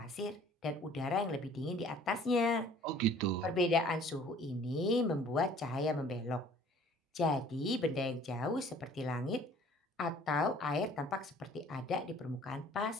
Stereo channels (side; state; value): both; normal; correlation 0.53